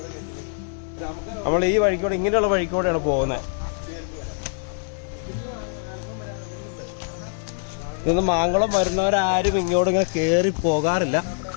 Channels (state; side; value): silent; right; digital silence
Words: നമ്മൾ ഈ വഴിക്കൂടെ ഇങ്ങനെയുള്ള വഴിക്കൂടെയാണ് പോകുന്നത്. ഇന്ന് മാങ്കുളം വരുന്നവരാരും ഇങ്ങോട്ട് ഇങ്ങനെ കയറി പോകാറില്ല.